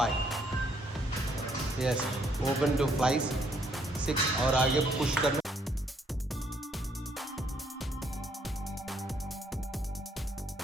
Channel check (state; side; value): normal; both; correlation 0.69